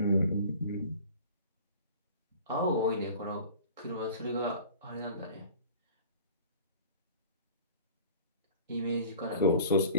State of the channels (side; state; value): both; inverted; correlation -0.45